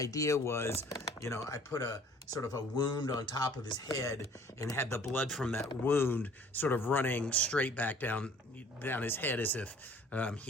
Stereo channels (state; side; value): normal; both; correlation 0.53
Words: was, I put a sort of a wound on top of his head and had the blood from that wound sort of running straight back down his head, as if